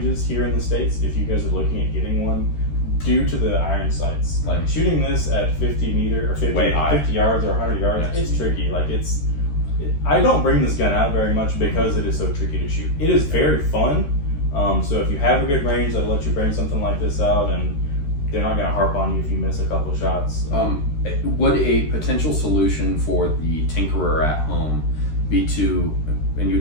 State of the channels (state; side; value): late; right; 13 ms